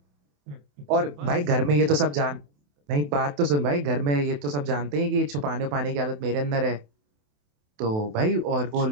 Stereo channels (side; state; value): left; late; 28 ms